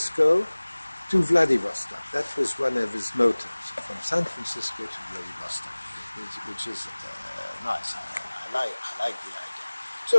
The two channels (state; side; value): inverted; both; correlation -1.00